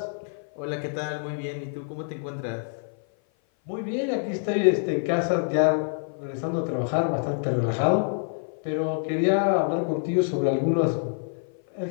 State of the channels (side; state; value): right; silent; 56 dB below the other